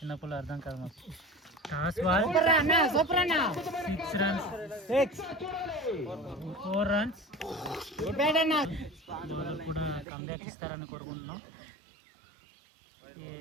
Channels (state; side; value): drops out; left; at 10.1 s